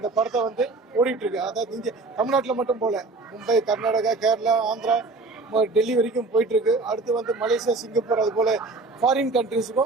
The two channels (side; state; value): left; quieter; 3.5 dB